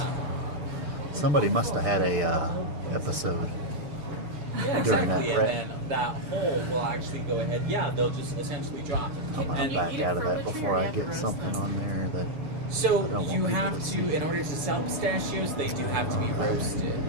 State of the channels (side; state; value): left; late; 6.7 ms